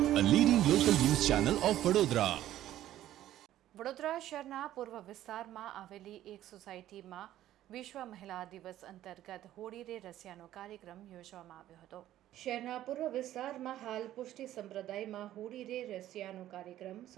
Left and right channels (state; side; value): quieter; left; 13.1 dB